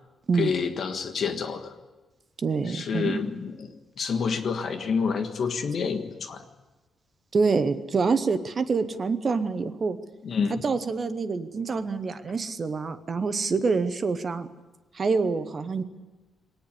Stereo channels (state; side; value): normal; both; correlation 0.82